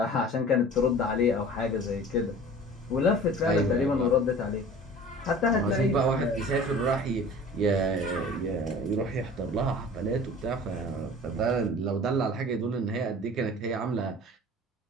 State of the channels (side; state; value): both; normal; correlation 0.43